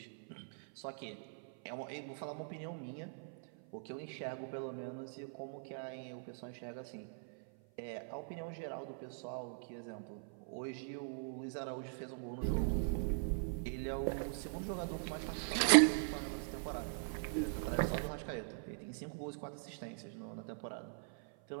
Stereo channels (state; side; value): silent; left; 50 dB below the other